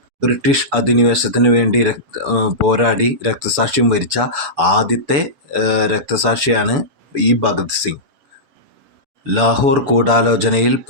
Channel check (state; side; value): late; left; 7.0 ms